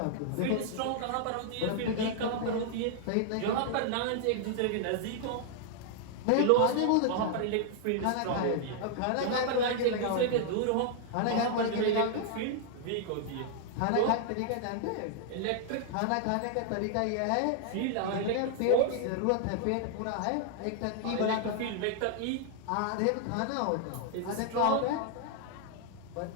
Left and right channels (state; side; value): different; both; correlation 0.00